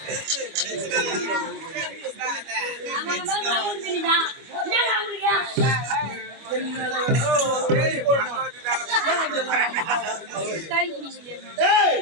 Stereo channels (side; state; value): left; late; 25 ms